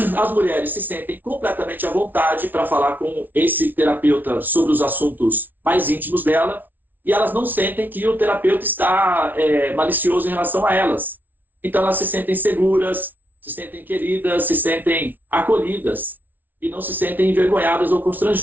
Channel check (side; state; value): left; late; 0.085 ms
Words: as mulheres se sentem completamente à vontade para falar com esse terapeuta sobre os assuntos mais íntimos dela, e elas não sentem que o terapeuta está malicioso em relação a elas. Então elas se sentem seguras, se sentem queridas, se sentem acolhidas, e não se sentem envergonhadas ou